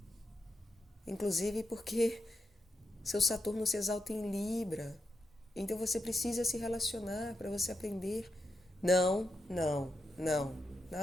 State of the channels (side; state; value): both; normal; correlation 0.86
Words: Inclusive porque seu Saturno se exalta em Libra. Então você precisa se relacionar para você aprender. Não, não, não,